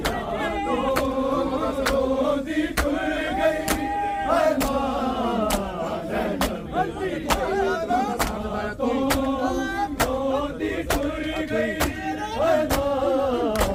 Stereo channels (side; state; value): both; identical; correlation 1.00